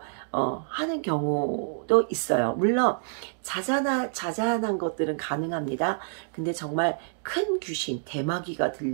하는 경우도 있어요. 물론 자잘한 것들은 가능합니다. 근데 정말 큰 귀신, 대마귀가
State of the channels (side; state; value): left; silent; digital silence